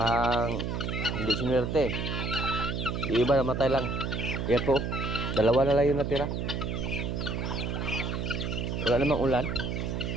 hindi sinwerte. Yung iba namatay lang. Yan po, dalawa na lang yung natira. Wala namang ulan.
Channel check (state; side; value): noise; right; hum, 2 dB below the sound